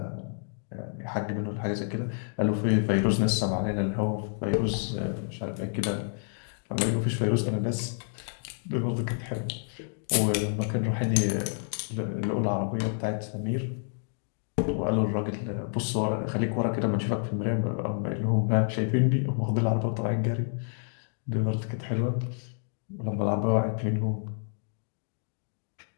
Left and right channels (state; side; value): silent; right; 59 dB below the other